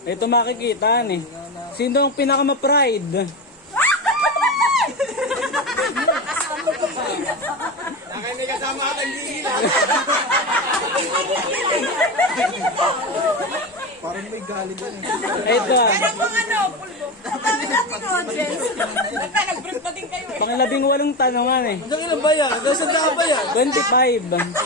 ito makikita eh. Sino ang pinakama-pride? May kasama ka tanggilan. Parang may galit yan. Ito Ang mga ano, pulbo. Ang dami natin audience. Nag-break na din kayo eh. pang 18 tanongan eh. Hanggang ilan ba yan? Hanggang saan ba yan? 25.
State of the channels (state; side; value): normal; both; correlation 0.20